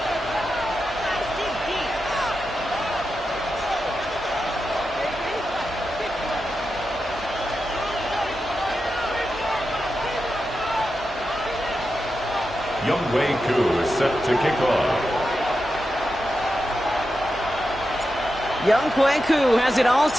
Ku is set to kick off. Ku has it all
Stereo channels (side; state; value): both; normal; correlation 0.89